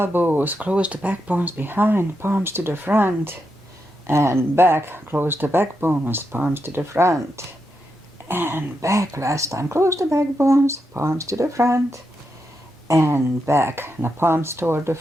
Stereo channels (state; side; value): normal; both; correlation 0.85